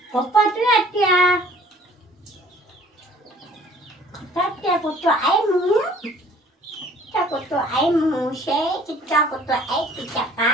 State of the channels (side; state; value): both; normal; correlation 0.54